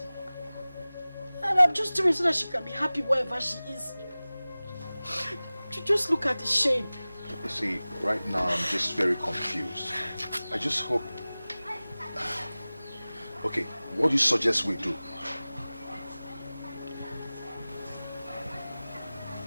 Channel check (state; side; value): inverted; both; correlation -0.98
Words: And I'm just doing it so that she can be happy wherever she is. Just look at the shame. You see, right now I'm just very confused. I just hope... Okay, what do you suggest we do?